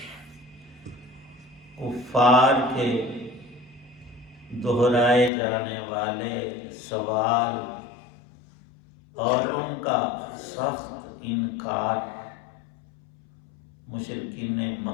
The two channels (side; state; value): right; drops out; at 5.3 s